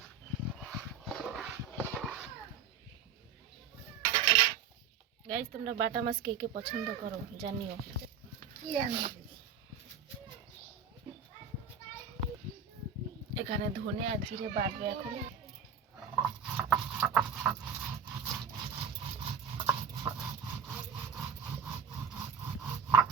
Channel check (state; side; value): quieter; left; 6.6 dB